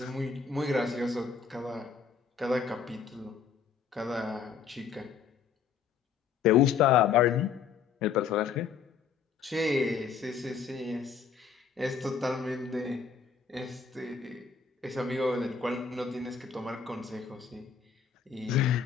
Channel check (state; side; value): quieter; right; 6.3 dB